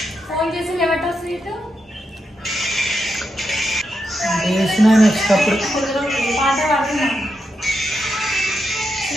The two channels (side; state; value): both; normal; correlation 0.85